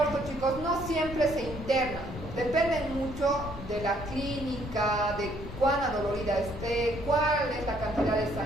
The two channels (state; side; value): noise; left; rumble, 11 dB below the sound